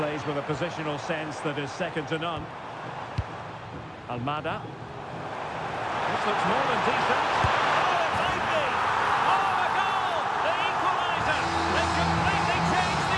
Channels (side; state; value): both; identical; correlation 1.00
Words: with a positional sense that is second to none. Almada. This looks more than decent. Oh, it might be! Oh, a goal! The equaliser! They completely changed